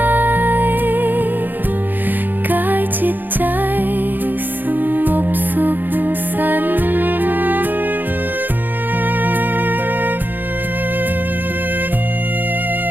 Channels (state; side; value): late; left; 0.089 ms